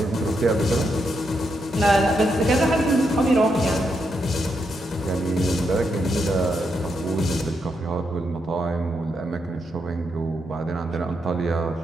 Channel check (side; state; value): both; normal; correlation 0.82